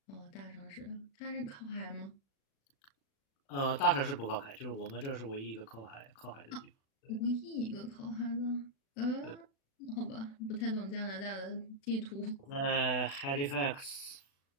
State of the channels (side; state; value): right; late; 36 ms